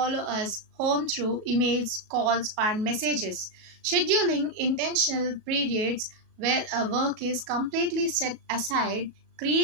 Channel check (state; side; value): late; left; 37 ms